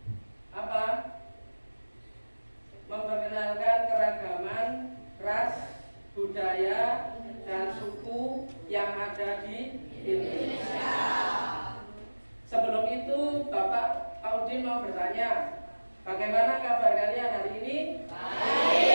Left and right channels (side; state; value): both; inverted; correlation -1.00